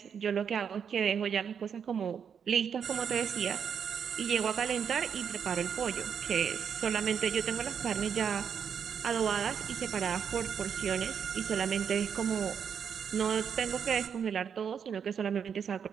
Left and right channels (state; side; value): quieter; left; 7.3 dB